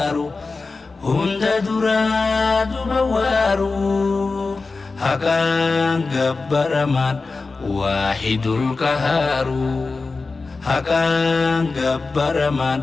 هند دراد بوارو حقان جبرمان واحد القهار حقان جبرمان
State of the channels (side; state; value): right; quieter; 3.9 dB